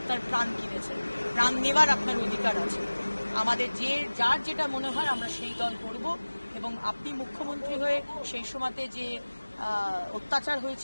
প্রাণ কিনেছেন। প্রাণ নেওয়ার আপনার অধিকার আছে। আমাদের যার যেটা মনে হয় আমরা সেই দল করব। এবং আপনি মুখ্যমন্ত্রী হয়ে সেই সময়তে যে অত্যাচার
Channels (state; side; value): inverted; both; correlation -1.00